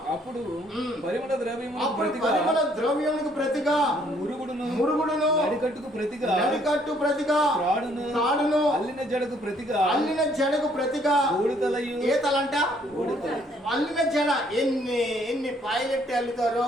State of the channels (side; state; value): both; normal; correlation 0.65